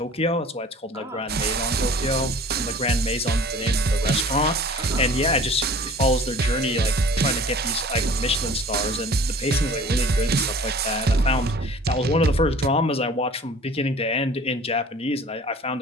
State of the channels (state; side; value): normal; both; correlation 0.46